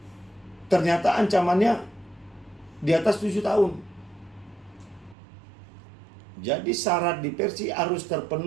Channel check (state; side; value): drops out; left; at 5.2 s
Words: Ternyata ancamannya di atas 7 tahun. Jadi syarat diversi harus